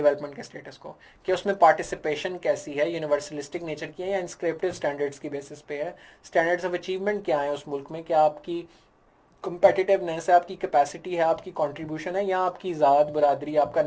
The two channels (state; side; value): identical; both; correlation 1.00